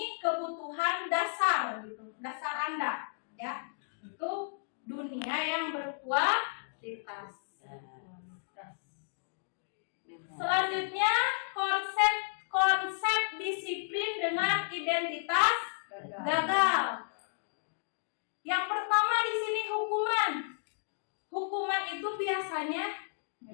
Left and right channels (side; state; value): right; silent; digital silence